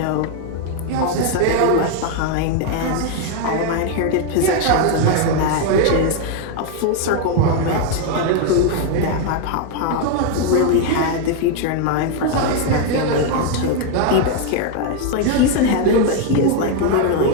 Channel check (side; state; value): both; different; correlation 0.01